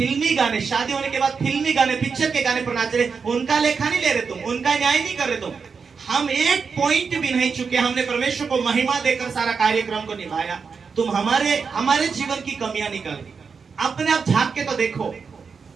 गाने, शादी होने के बाद फिल्मी गाने, पिक्चर के गाने पर नाच रहे, उनका लेखा नहीं ले रहे तुम, उनका न्याय नहीं कर रहे तुम। हम एक पॉइंट भी नहीं चुके, हमने परमेश्वर को महिमा देकर सारा कार्यक्रम को निभाया। तुम हमारे जीवन की कमियां निकाल, अपने आप झांक के तो देखो।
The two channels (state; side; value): quieter; left; 5.5 dB